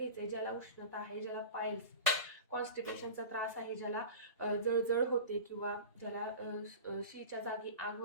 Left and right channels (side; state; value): both; inverted; correlation -0.33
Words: ज्याला उष्णता आहे, ज्याला पायल्स कॉन्स्टिपेशनचा त्रास आहे, ज्याला जळजळ होते, किंवा ज्याला शीच्या जागी आग